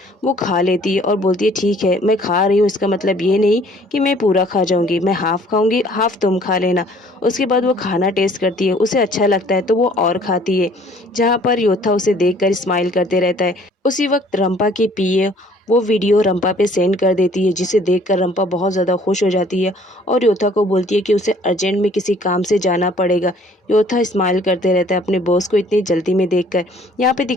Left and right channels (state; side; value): normal; both; correlation 0.57